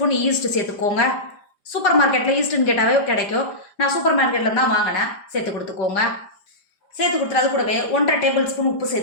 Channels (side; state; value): right; late; 5.0 ms